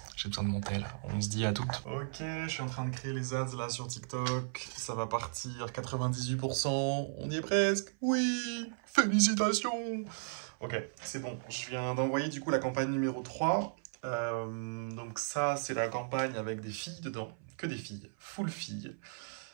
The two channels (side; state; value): left; silent; 54 dB below the other